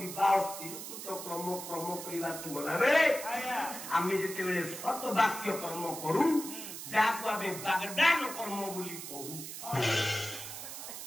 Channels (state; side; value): noise; right; hiss, 9 dB below the sound